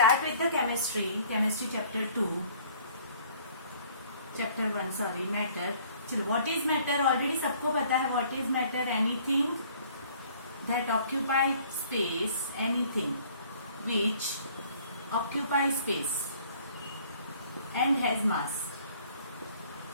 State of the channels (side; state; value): both; inverted; correlation -0.56